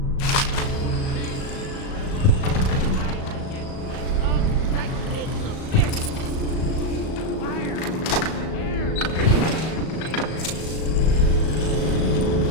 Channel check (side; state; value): right; late; 37 ms